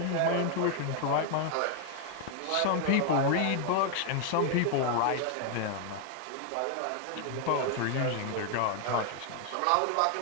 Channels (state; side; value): different; both; correlation 0.00